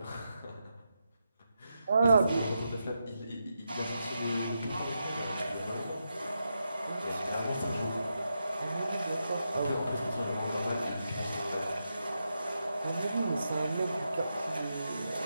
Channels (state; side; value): inverted; both; correlation -0.86